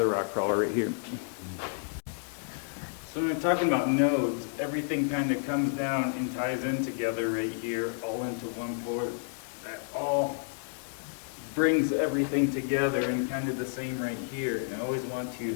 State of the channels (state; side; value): silent; right; digital silence